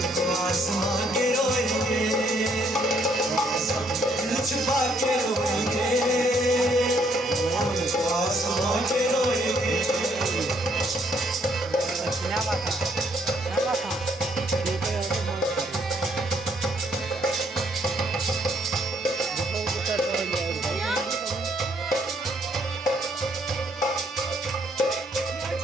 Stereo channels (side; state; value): both; normal; correlation 0.69